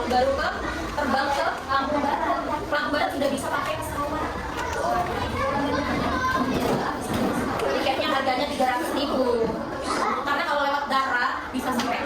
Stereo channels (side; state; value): both; identical; correlation 1.00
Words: baru terbang ke Lampung Barat. Lampung Barat sudah bisa pakai pesawat. Tiketnya harganya 300.000. Karena kalau lewat darat bisa